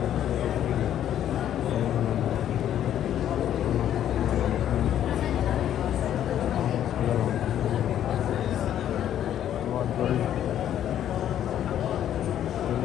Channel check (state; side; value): quieter; right; 10.8 dB